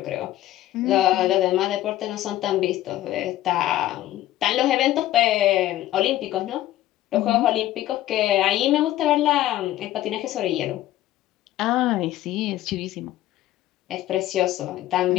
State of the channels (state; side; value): quieter; right; 14.3 dB